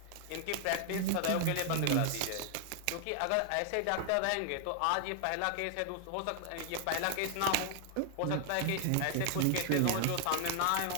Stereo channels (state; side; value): different; both; correlation 0.00